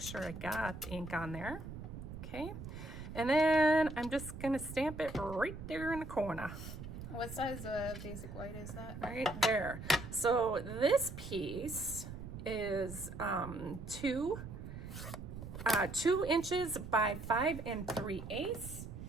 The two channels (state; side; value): noise; right; rumble, 10 dB below the sound